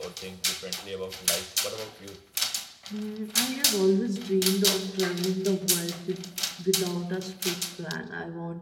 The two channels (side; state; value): both; identical; correlation 1.00